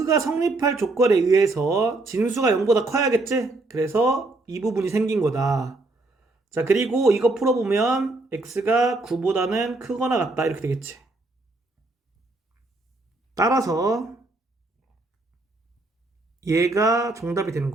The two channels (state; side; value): quieter; left; 3.0 dB